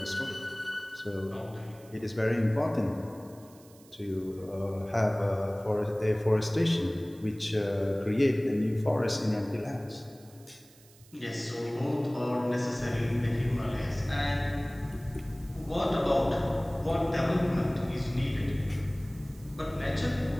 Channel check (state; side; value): noise; right; hiss, 25 dB below the sound